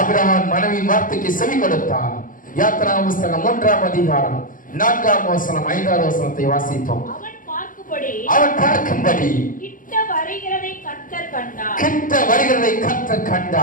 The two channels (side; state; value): right; late; 0.39 ms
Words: மனைவி வார்த்தைக்கு செவி கொடுத்தான். யாத்திராகம புத்தகம் 3ஆம் அதிகாரம் 4ஆம் வசனம் 5ஆம் வசனத்தை வாசிப்போம். அவன் பார்க்கும்படி கிட்ட வருகிறதை கர்த்தர்